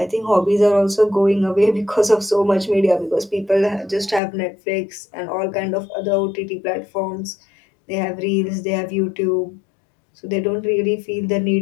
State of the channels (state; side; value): drops out; right; at 4.2 s